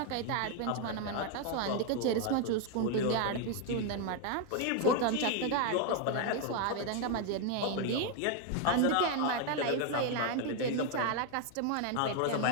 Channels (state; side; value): different; both; correlation 0.01